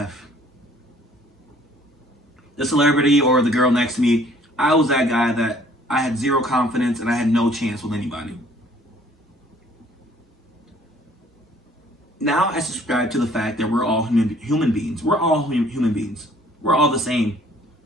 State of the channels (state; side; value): normal; both; correlation 0.57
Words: The celebrity or the girl next to me. I was that guy that I had zero confidence and I had no chance with anybody. Now I subscribe to the fact that we're all human beings. We're all human beings. We're all the same.